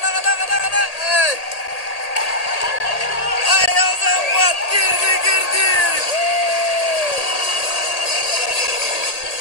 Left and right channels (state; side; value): late; right; 1.8 ms